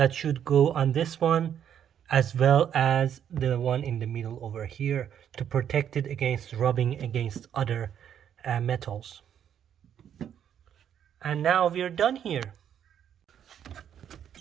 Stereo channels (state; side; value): quieter; left; 9.3 dB